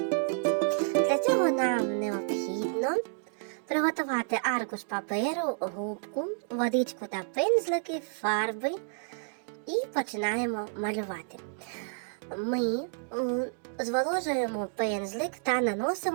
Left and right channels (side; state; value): left; silent; digital silence